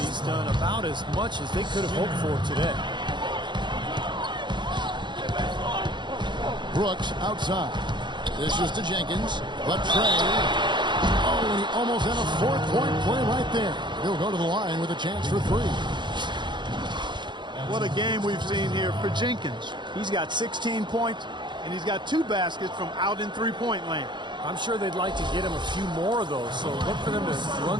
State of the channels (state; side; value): late; left; 0.22 ms